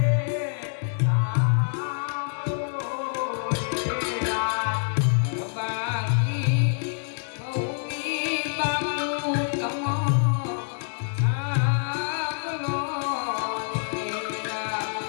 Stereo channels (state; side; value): silent; right; 61 dB below the other